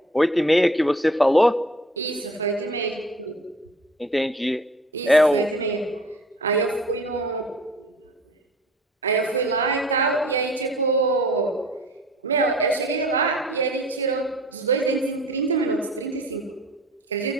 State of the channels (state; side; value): normal; both; correlation 0.48